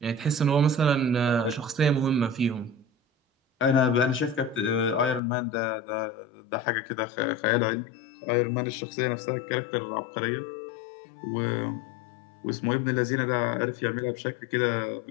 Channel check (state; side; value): drops out; right; at 5.2 s